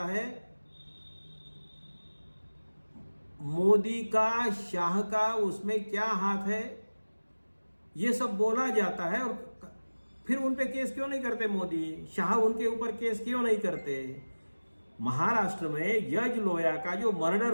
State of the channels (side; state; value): both; inverted; correlation -1.00